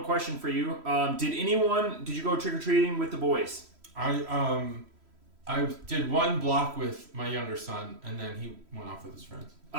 question for you. Did you go trick-or-treating with the boys? I did one block with my younger son, and then he went off with his friends.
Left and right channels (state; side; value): late; left; 3.1 ms